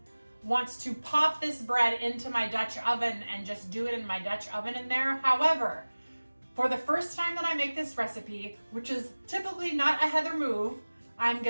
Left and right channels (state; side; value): inverted; both; correlation -1.00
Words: wants to pop this bread into my Dutch oven and just do it in my Dutch oven in there. However, for the first time that I make this recipe, which is typically not a Heather move, I'm